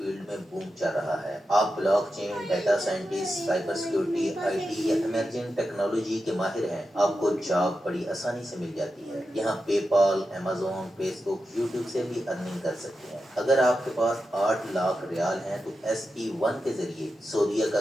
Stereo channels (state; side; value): normal; both; correlation 0.90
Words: में बूम चल रहा है। आप blockchain, data scientist, cyber security, IT या इमर्जिंग टेक्नोलॉजी के माहिर हैं, आपको जॉब बड़ी आसानी से मिल जाती है। यहाँ पेपाल, अमेजोन, फेसबुक, यूट्यूब से भी अर्निंग कर सकते हैं। अगर आपके पास 8 लाख रियाल हैं तो SE1 के जरिए सऊदीया का